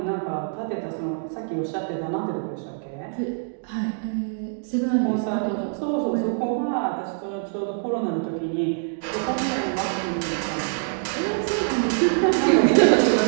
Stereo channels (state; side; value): silent; left; digital silence